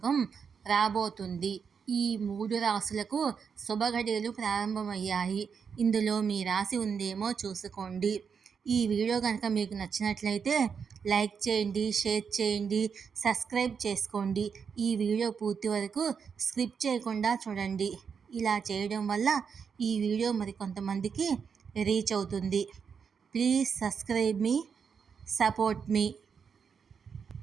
రాబోతుంది. ఈ 3 రాశులకు శుభఘడియలు ప్రారంభమయ్యాయి. ఇందులో మీ రాశి ఉందేమో చూసుకోండి. ఈ వీడియో కనుక మీకు నచ్చినట్లయితే లైక్ చేయండి, షేర్ చేయండి, సబ్స్క్రైబ్ చేసుకోండి. ఈ వీడియో పూర్తి వరకు స్కిప్ చేయకుండా చూడండి. ఇలా చేయడం వల్ల ఈ వీడియో మరికొంతమందికి రీచ్ అవుతుంది. ప్లీజ్ సబ్స్క్రైబ్ మీ, సపోర్ట్ మీ.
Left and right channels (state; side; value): quieter; left; 6.4 dB